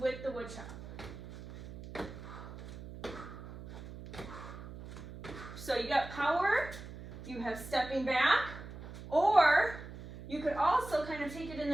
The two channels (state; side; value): noise; right; hum, 12 dB below the sound